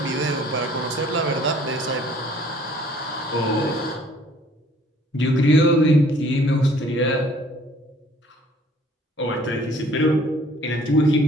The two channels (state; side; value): normal; both; correlation 0.57